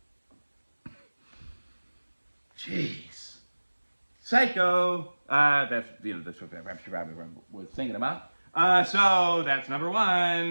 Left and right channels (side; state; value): both; inverted; correlation -1.00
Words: Jeez, Psycho. That's what she probably was thinking about. So that's number